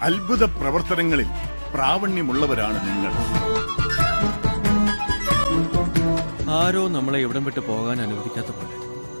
അത്ഭുത പ്രവർത്തനങ്ങളിൽ പ്രാവണ്യമുള്ളവരാണ് നിങ്ങൾ. ആരോ നമ്മളെ ഇവിടം വിട്ട് പോകാൻ അനുവദിക്കാത്ത പോലെ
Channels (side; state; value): both; inverted; correlation -1.00